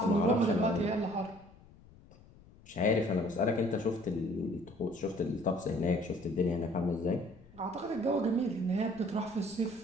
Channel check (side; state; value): left; noise; rumble, 24 dB below the sound